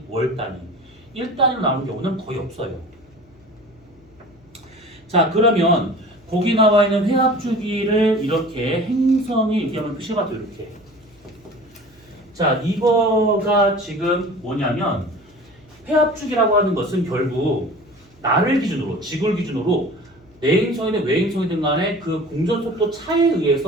월 단위, 일 단위로 나오는 경우는 거의 없어요. 자, 그러면 거기 나와 있는 회합주기를 이렇게 행성이 이렇게 하면 표시가 돼 이렇게. 자, 이거가 지금 뭐냐면 회합주기라고 하는 것은 결국 나를 기준으로, 지구를 기준으로 내행성이든 외행성이든 간에 그 공전속도 차에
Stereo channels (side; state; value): left; noise; hum, 29 dB below the sound